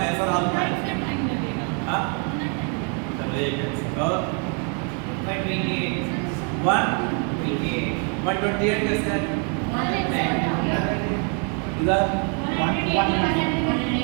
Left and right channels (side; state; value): left; quieter; 38.9 dB